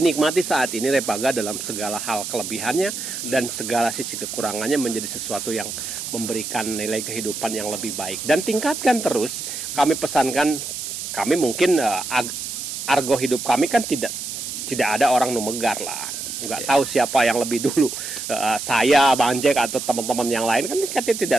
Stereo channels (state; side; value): noise; right; hiss, 6 dB below the sound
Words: nikmati saat ini Repaga dalam segala hal kelebihannya dan segala sisi kekurangannya menjadi sesuatu yang memberikan nilai kehidupan yang lebih baik. Dan tingkatkan terus, kami pesankan, kami mungkin argo hidup kami kan tidak ada orang numegar lah. Nggak tahu siapa yang lebih dulu, saya, Bang Jack, atau teman-teman yang lain kan kita